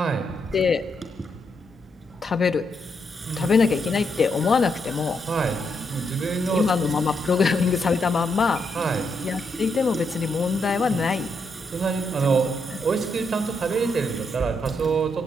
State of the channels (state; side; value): normal; both; correlation 0.79